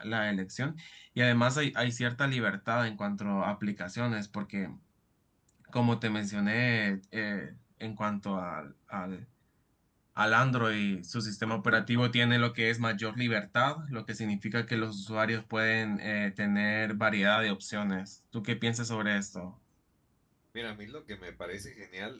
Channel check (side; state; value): both; identical; correlation 1.00